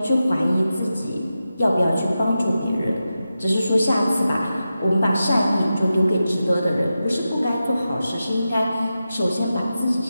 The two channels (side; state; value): both; inverted; correlation -0.91